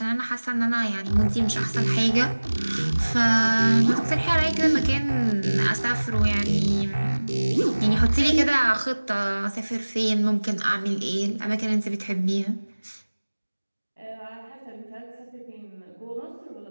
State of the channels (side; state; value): both; inverted; correlation -1.00